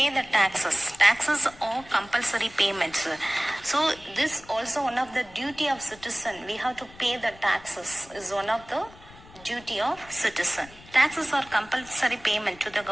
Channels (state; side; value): noise; left; rumble, 22 dB below the sound